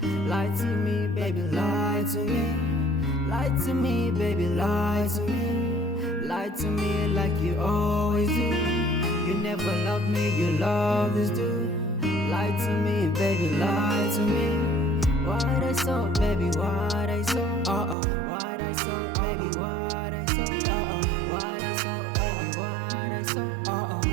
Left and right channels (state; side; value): drops out; left; at 17.9 s